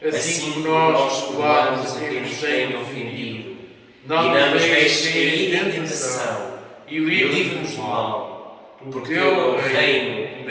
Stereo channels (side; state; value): both; identical; correlation 1.00